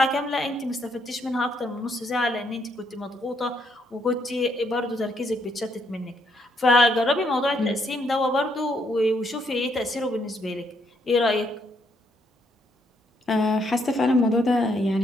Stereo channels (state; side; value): normal; both; correlation 0.73